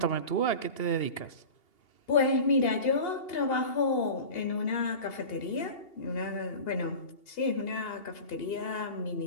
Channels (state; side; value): late; right; 2.8 ms